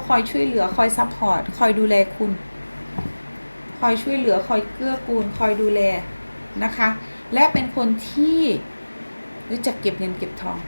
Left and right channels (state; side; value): inverted; both; correlation -1.00